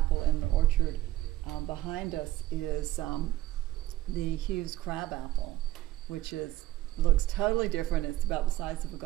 in the orchard behind us is the Hughes crab apple, which looks totally different. It's about the size of a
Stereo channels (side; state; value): left; quieter; 15.2 dB